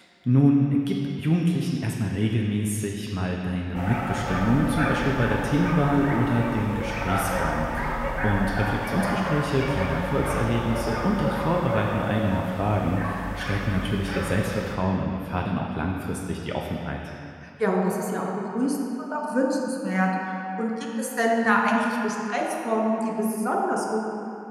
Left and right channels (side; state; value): both; identical; correlation 1.00